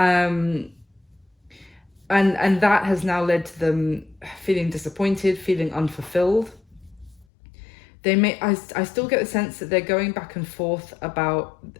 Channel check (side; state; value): right; drops out; at 7.2 s